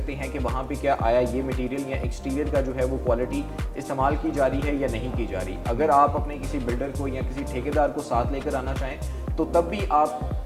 हैं कि वहाँ पे क्या आया, ये मटेरियल या एक्सटीरियर का जो है वो क्वालिटी इस्तेमाल की जा रही है या नहीं की जा रही। अगर आप अपने किसी बिल्डर को या किसी ठेकेदार को साथ लेकर आना चाहें तो तब भी आप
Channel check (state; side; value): identical; both; correlation 1.00